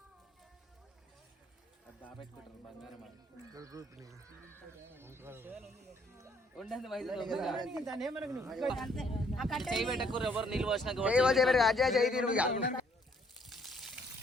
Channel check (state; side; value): normal; both; correlation 0.66